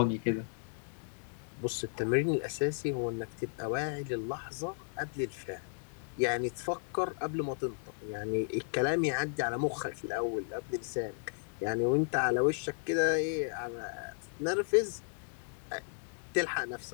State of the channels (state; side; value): silent; right; 55 dB below the other